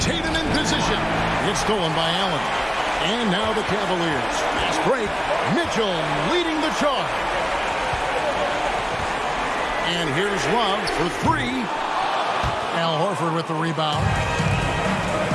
in position. It's stolen by Allen. And now the Cavaliers. Fast break. Mitchell leading the charge. And here's Love for 3. Al Horford with the rebound.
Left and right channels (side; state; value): both; identical; correlation 1.00